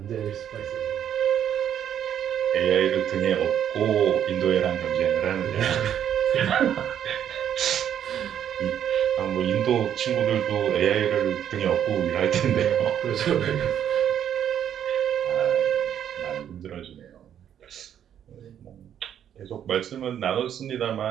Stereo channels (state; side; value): quieter; left; 9.6 dB